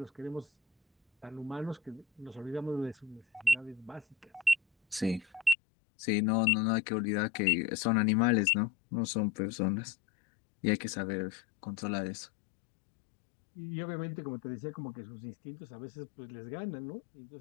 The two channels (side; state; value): right; drops out; at 5.6 s